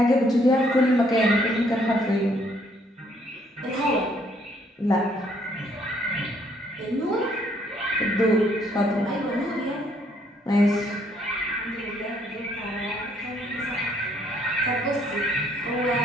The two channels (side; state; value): both; normal; correlation 0.67